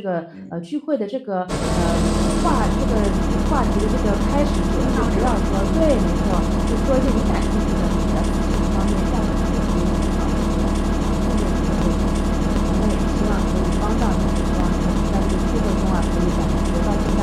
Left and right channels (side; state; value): both; identical; correlation 1.00